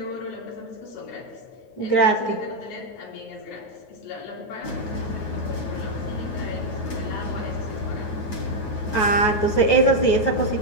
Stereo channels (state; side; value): late; right; 9.4 ms